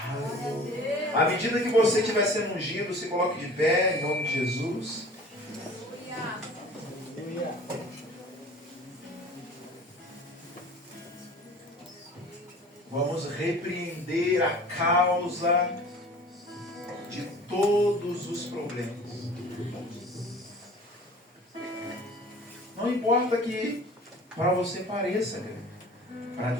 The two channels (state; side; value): normal; both; correlation 0.44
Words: Aleluia. À medida que você estiver sendo ungido, se coloque de pé, em nome de Jesus. Vamos repreender a causa de todos os problemas. Não importa que para você pareça grande, para